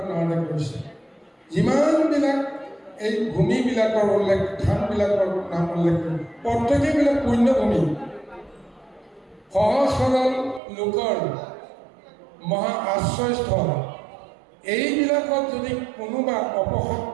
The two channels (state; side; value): drops out; left; at 10.6 s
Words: নামে কৰিছে। যিমানবিলাক এই ভূমিবিলাকৰ উল্লেখ, থানবিলাকৰ নাম উল্লেখ কৰি প্ৰত্যেকেইবিলাক পুণ্যভূমি, সহজ সৰল লোকৰ মহা আশ্ৰয়স্থল। এইবিলাকত যদি কোনোবা